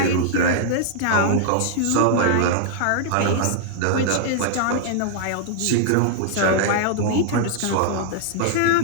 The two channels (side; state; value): both; different; correlation -0.01